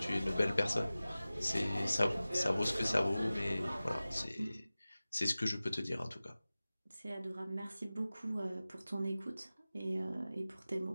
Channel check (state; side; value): inverted; both; correlation -0.97